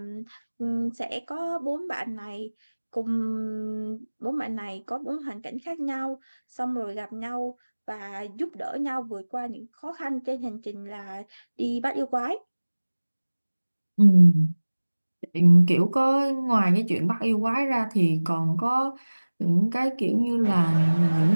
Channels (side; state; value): both; inverted; correlation -1.00